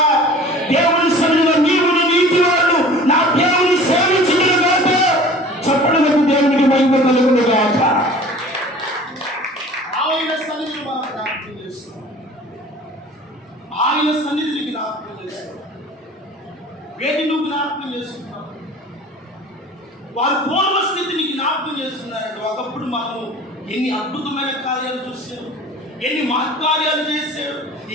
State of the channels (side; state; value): both; normal; correlation 0.44